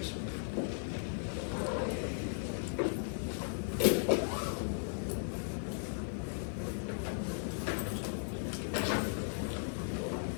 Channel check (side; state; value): right; silent; digital silence